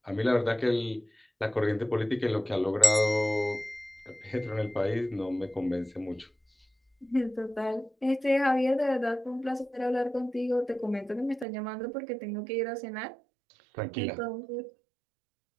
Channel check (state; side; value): drops out; left; at 11.5 s